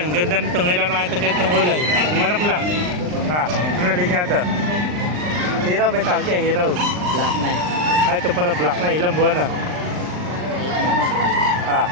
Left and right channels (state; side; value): late; left; 39 ms